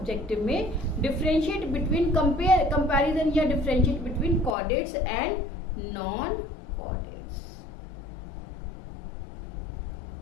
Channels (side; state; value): right; drops out; at 4.5 s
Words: में। डिफरेंशिएट बिटवीन कंपैरिजन या differentiate between chordates and non chordates.